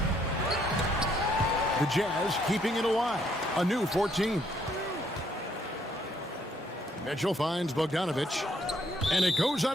The Jazz keeping it alive. A new 14. Mitchell finds Bogdanovich, and it goes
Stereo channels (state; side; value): normal; both; correlation 0.69